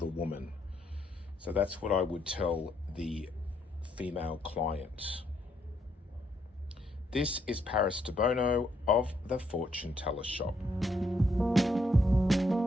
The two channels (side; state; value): both; normal; correlation 0.74